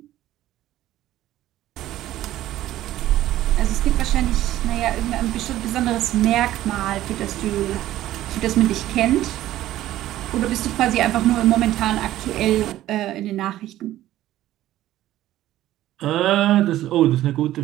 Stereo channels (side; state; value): left; quieter; 14.1 dB